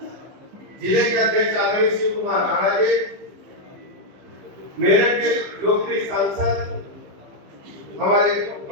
जिले के अध्यक्ष आदरणीय शिव कुमार राणा जी, मेरठ के लोकप्रिय सांसद हमारे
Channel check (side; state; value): left; late; 15 ms